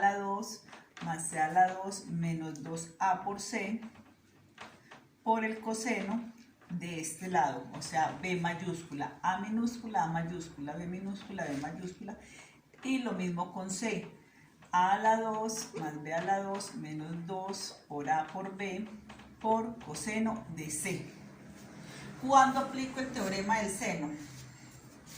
2 más c a la 2 menos 2a por c por el coseno de este lado, o sea, b mayúscula, a minúscula, a mayúscula, b minúscula, b mayúscula. Y lo mismo con c, a a la 2 más b a la 2 menos 2 por a por b por coseno de c. ¿Cuándo aplico el teorema del seno?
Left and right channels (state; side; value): identical; both; correlation 1.00